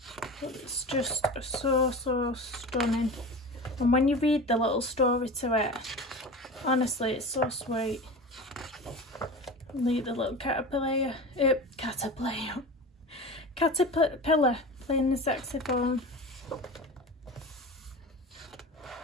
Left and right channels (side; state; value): both; normal; correlation 0.32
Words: But it's just so stunning. And when you read the little story to it, honestly, it's so sweet. Look, the little caterpillar playing the saxophone.